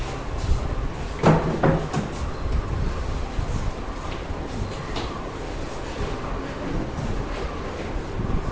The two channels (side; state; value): both; identical; correlation 1.00